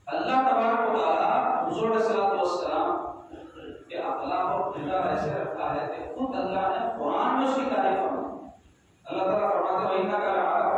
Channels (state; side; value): identical; both; correlation 1.00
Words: اللہ تبارک و تعالی حضور علیہ الصلوۃ والسلام کے اخلاق اور کردار ایسے رکھا ہے کہ خود اللہ نے قرآن میں اس کی تعریف فرمائی. اللہ تعالیٰ فرماتے ہیں وَإِنَّكَ